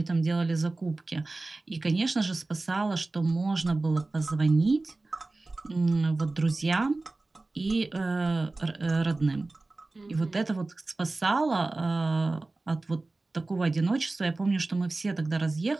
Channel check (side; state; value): left; quieter; 3.2 dB